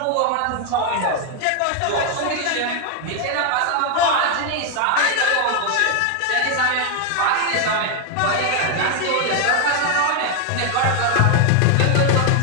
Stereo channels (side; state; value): both; different; correlation 0.01